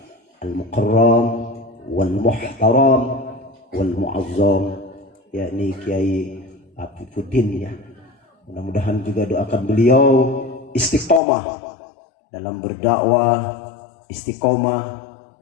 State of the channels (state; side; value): drops out; right; at 11.2 s